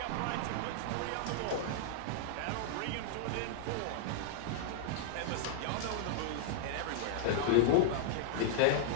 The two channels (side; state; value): both; different; correlation -0.01